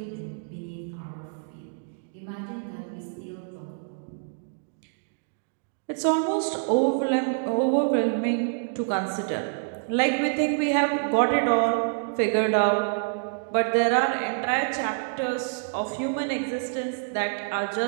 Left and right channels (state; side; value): silent; left; digital silence